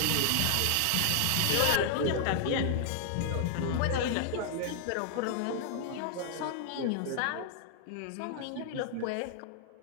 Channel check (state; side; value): different; both; correlation -0.01